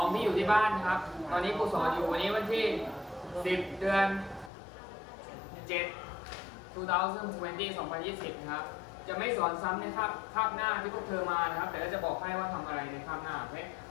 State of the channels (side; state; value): right; drops out; at 4.5 s